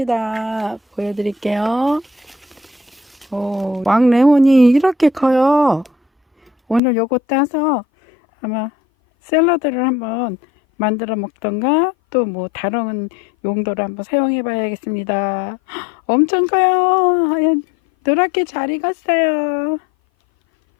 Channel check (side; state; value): right; drops out; at 6.8 s